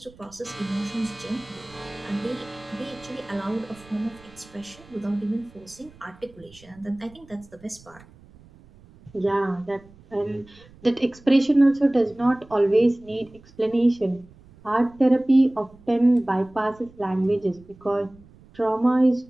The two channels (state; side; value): noise; right; rumble, 25 dB below the sound